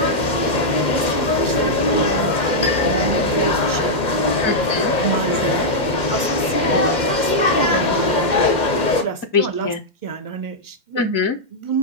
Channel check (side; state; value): right; late; 2.1 ms